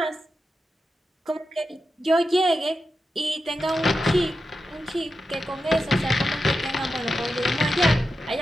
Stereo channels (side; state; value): both; normal; correlation 0.90